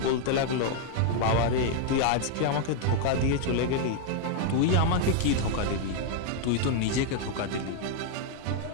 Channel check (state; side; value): different; both; correlation 0.00